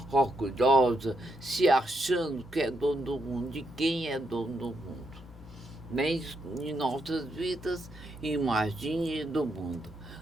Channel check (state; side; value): normal; both; correlation 0.79